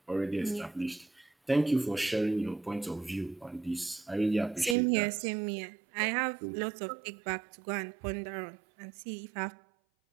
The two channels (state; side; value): drops out; left; at 4.8 s